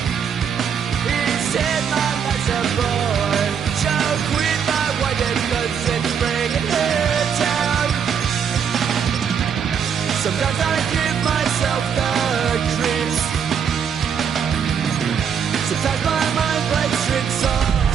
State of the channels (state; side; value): quieter; left; 7.4 dB